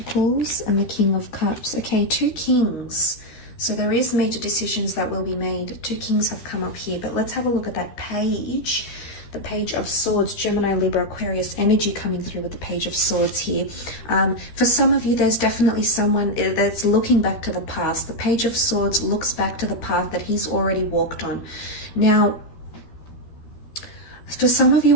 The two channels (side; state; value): right; late; 13 ms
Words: and the King of Cups. Okay, two kings. So there is major decisions that will be made. Two kings have come up here, but let's have a look at that page. The Page of Swords, Gemini, Libra, Aquarius energy coming through with the Page of Swords here. For some of you, there's definitely someone that's looking back to the past. The Page of Swords looks back to the path that he's already walked on. Now, for some of